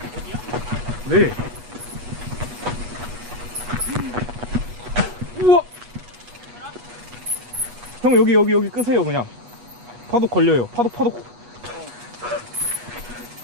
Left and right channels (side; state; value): left; late; 8.2 ms